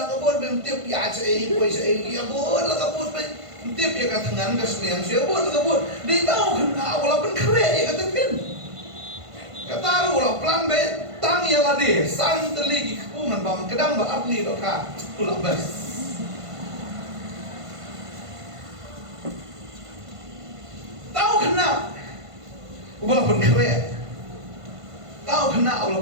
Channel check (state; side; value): late; left; 1.5 ms